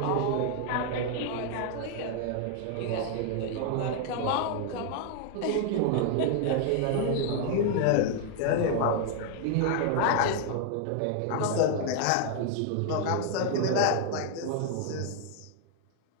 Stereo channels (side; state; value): both; different; correlation 0.00